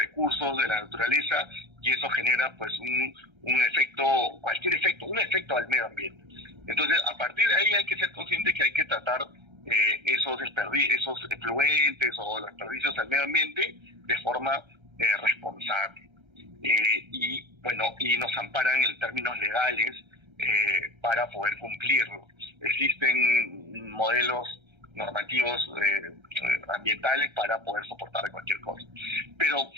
de la naturaleza y eso genera pues un efecto, cualquier efecto, un efecto al medio ambiente. Entonces, a partir de ahí hay que ser consciente que hay que tratar esos efluentes o los desperdicios al medio ambiente de forma responsable. Y bueno, y nos amparan en términos legales para poder cumplirlo. Existen modelos normativos ambientales para poder soportar cualquier cosa. Pero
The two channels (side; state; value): left; late; 1.3 ms